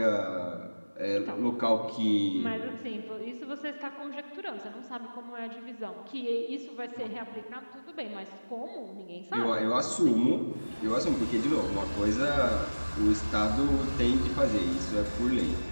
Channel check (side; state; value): both; inverted; correlation -1.00